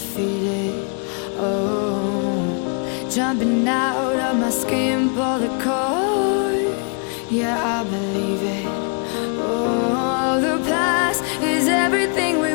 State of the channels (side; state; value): right; quieter; 39.3 dB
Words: oh. Jumping out of my skin, pull the cord. Yeah, I believe it. Oh, the past is everything we